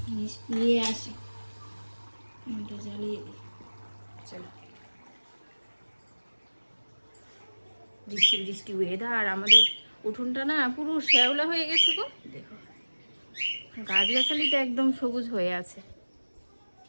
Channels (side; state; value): both; inverted; correlation -1.00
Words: নিয়ে আসি, এটা জ্বালিয়ে দিই। চলো, বৃষ্টি বৃষ্টি ওয়েদার, আমাদের উঠোনটা না পুরো শ্যাওলা হয়ে গেছে গো, দেখো গাছগাছালিটা একদম সবুজ হয়ে আছে।